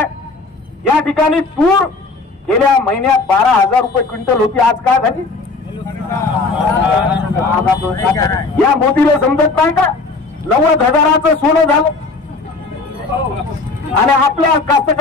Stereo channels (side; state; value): right; quieter; 3.9 dB